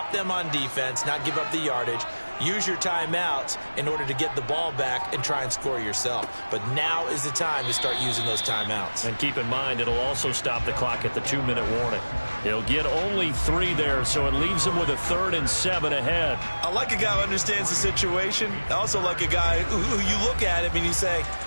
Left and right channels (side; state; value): both; inverted; correlation -1.00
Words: them on defense, not give up the yardage, use your timeouts in order to get the ball back and try and score yourself. But now is the time to start using those timeouts. And keep in mind, it'll also stop the clock at the 2-minute warning. He'll get only 3 there, so it leaves him with a 3rd and 7 ahead. I like a guy who understands the situation. I also like a guy who you look at him and you say,